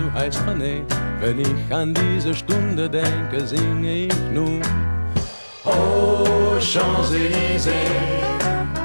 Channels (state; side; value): inverted; both; correlation -1.00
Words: heißt René. Wenn ich an diese Stunde denke, singe ich nun: Oh, Champs-Élysées,